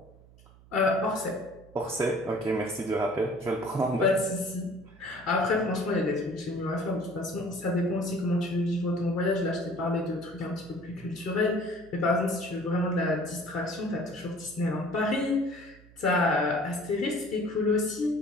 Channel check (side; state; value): right; noise; hum, 24 dB below the sound